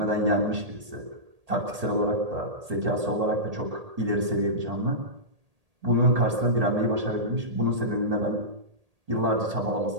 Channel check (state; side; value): late; left; 1.8 ms